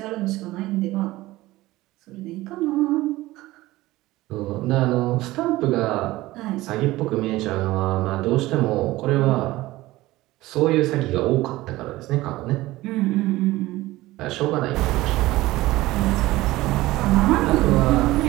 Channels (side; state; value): left; quieter; 18.0 dB